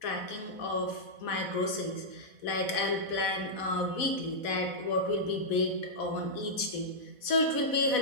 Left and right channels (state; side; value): late; right; 4.1 ms